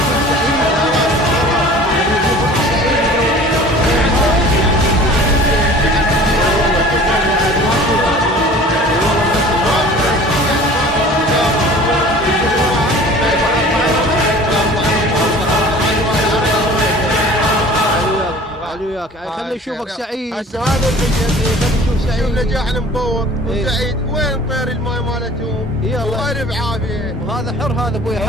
خلي يشوفك سعيد. هسه هذا خلي يشوف سعيد نجاحنا مبوق وسعيد. وين طير الماي مالتهم؟ والله بعافيه. وهذا حر، هذا ابوي حر.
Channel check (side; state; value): both; normal; correlation 0.45